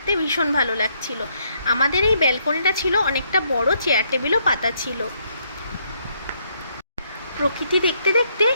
ভীষণ ভালো লাগছিল। আমাদের এই ব্যালকনিটা ছিল অনেকটা বড়, চেয়ার টেবিলও পাতা ছিল। প্রকৃতি দেখতে দেখতে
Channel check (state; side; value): inverted; both; correlation -0.72